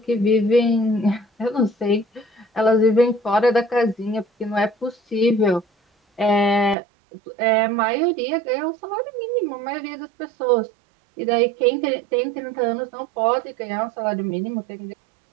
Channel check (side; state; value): left; drops out; at 6.8 s